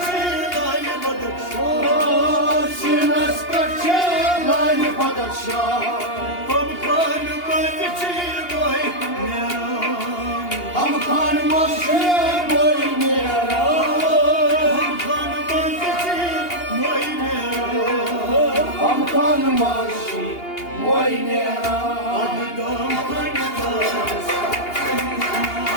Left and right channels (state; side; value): late; right; 2.8 ms